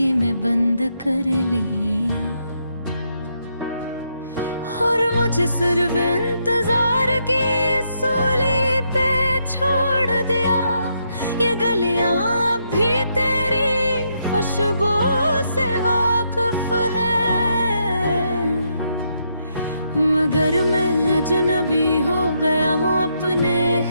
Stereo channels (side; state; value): both; inverted; correlation -0.78